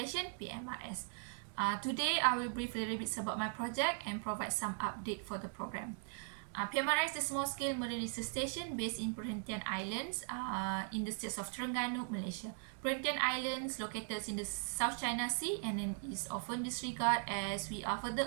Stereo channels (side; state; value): left; silent; 52 dB below the other